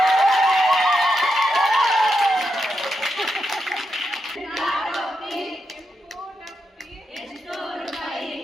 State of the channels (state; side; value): normal; both; correlation 0.85